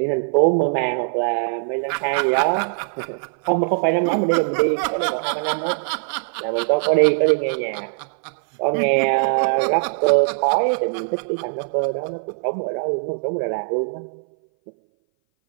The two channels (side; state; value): left; silent; 60 dB below the other